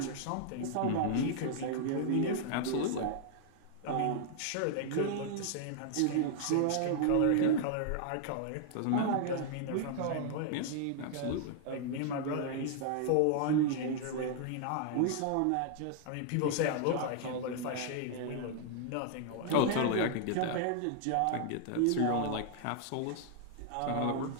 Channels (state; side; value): different; both; correlation -0.01